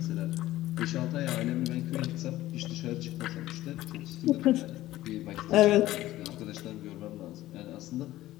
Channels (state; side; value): quieter; right; 15.5 dB